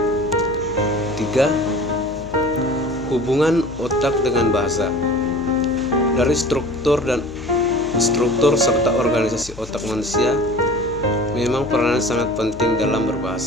3. Hubungan otak dengan bahasa. Dari struktur serta organisasi otak manusia memang peranan sangat penting dalam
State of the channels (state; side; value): noise; left; hum, 15 dB below the sound